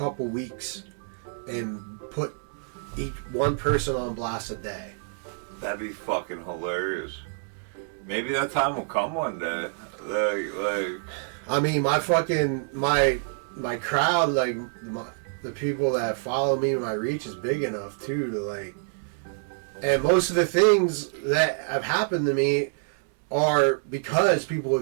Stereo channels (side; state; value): left; silent; digital silence